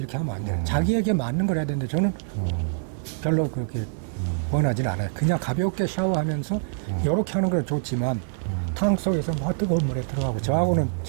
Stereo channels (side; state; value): left; silent; digital silence